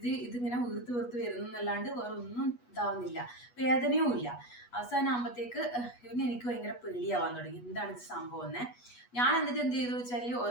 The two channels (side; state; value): right; late; 8.2 ms